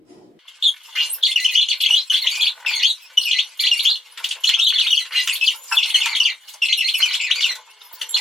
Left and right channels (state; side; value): normal; both; correlation 0.77